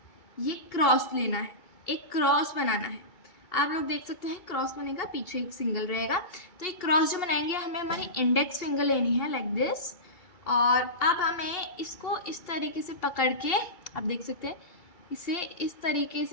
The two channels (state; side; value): late; right; 2.8 ms